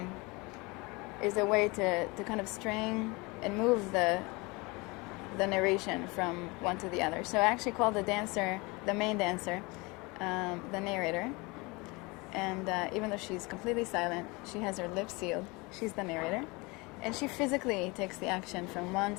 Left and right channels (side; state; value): right; quieter; 25.7 dB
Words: way to kind of string and move the narration from one to the other. So I actually call the dancer, the main dancer, the narrator. And even though she's completely silent, she has her lips sealed, she's the narrator. And she physically takes the action from one